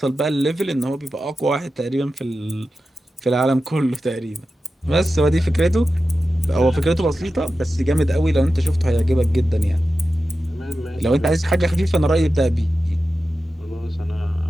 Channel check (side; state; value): both; normal; correlation 0.92